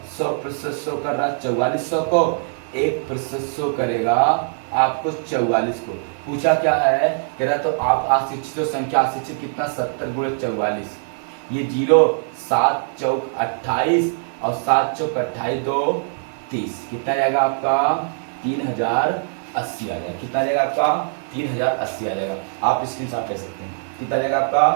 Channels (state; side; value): silent; left; 59 dB below the other